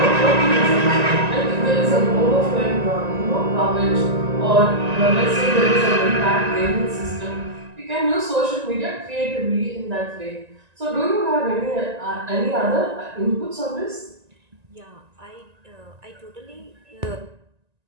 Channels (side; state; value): left; late; 1.9 ms